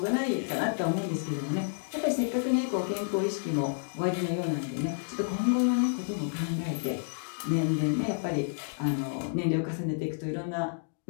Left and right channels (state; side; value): silent; right; digital silence